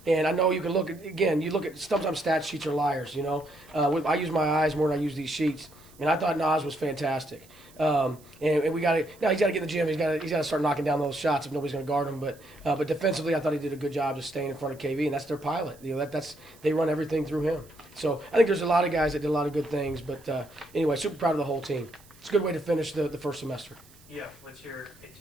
I know you can look at, you look at, sometimes stat sheets are liars, I use my eyes more than I use these sheets. And I thought Nas was fantastic. And we got to, now he's got to get in the gym. He's got to start knocking down those shots if nobody's going to guard him. But defensively, I thought he did a good job just staying in front of KV, and that's their pilot. They run everything through him. So I think there's a lot of guys that did a lot of good things. But anyway, super proud of the whole team. It's a good way to finish the first semester. Yeah, what's your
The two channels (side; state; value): right; noise; hiss, 26 dB below the sound